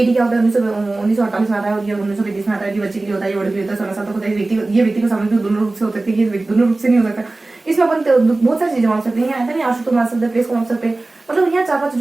क्या होता है, 1948 में आता है और ये 1935 में आता है। ये बच्चे के लिए होता है, ये बड़े के लिए होता है, 16 साल तक होता है। ये व्यक्ति को समझ भी दोनों रूप से हो सकते हैं, ये दोनों रूप से नहीं हो सकता। इसमें अपन बहुत सारी चीजें मान सकते हैं। यहाँ आशु को मान सकते हैं, प्लेस को मान सकते हैं, मतलब यहाँ 4-5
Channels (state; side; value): quieter; left; 3.1 dB